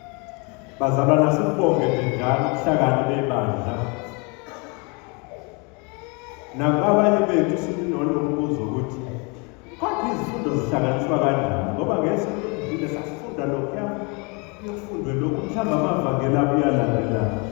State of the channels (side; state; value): right; quieter; 31.4 dB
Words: Bazalwana sibonge njalo ubuhlakani bebandla. Nabanye bethu sinolombuzo ukuthi kodwa izifundo zihlanganiswa kanjani ngoba ngesonto elidlule sasifunda lokho yofundwe lokhu mhlawumbe amavangeli abuyalandela